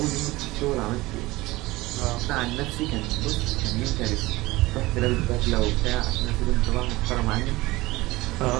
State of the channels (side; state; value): left; quieter; 19.9 dB